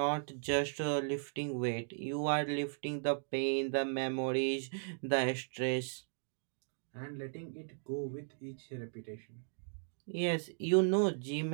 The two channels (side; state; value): left; silent; digital silence